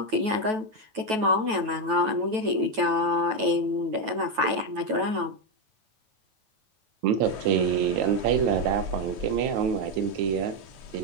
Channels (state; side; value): late; left; 9.2 ms